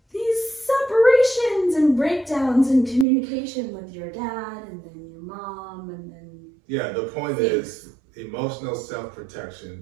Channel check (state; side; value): drops out; left; at 3.1 s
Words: these separations and breakdowns in communication with your dad, and then your mom, and then yeah. The point is emotional